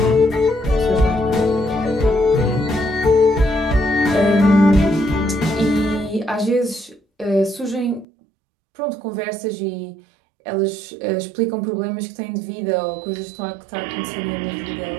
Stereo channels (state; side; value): drops out; left; at 8.1 s